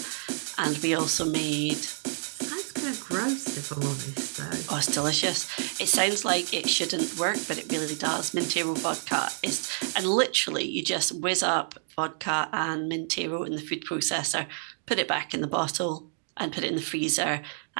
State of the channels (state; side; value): silent; left; digital silence